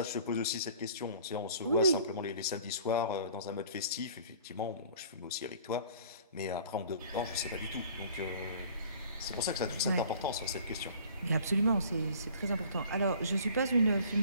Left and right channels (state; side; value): inverted; both; correlation -0.50